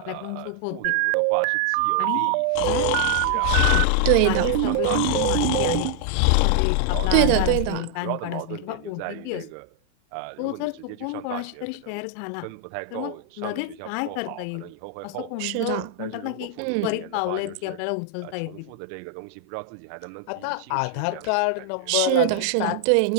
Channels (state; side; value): different; both; correlation 0.00